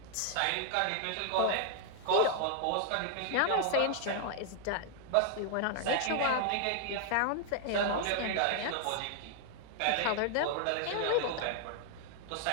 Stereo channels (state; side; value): different; both; correlation 0.00